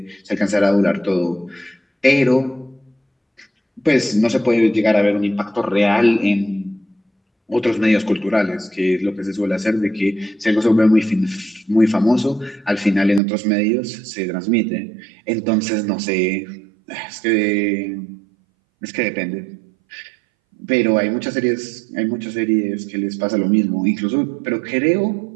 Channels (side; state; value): left; drops out; at 13.2 s